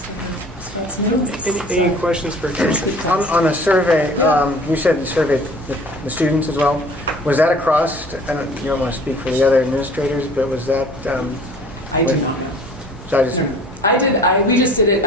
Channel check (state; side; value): normal; both; correlation 0.49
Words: Any questions for Kirsten? On the survey, you said you surveyed the students as well. Was that across, you don't want to speak for the other administrators, but was that? I do not know. So we just did